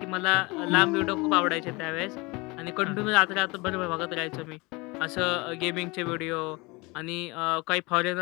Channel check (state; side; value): quieter; right; 25.2 dB